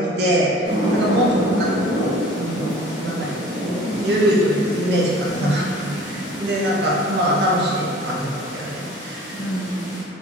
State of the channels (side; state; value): both; normal; correlation 0.46